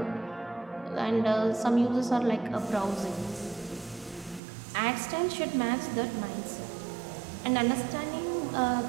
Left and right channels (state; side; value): drops out; left; at 4.4 s